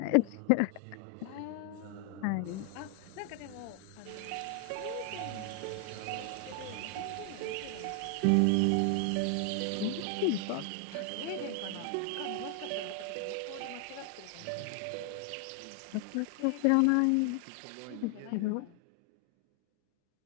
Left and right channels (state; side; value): different; both; correlation 0.00